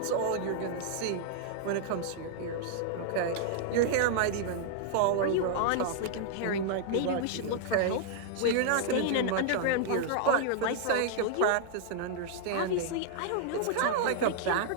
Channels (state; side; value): different; both; correlation -0.01